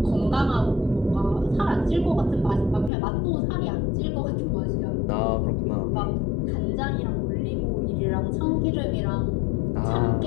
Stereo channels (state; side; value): drops out; right; at 2.9 s